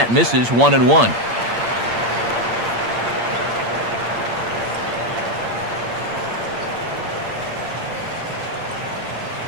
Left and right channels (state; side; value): late; left; 8.7 ms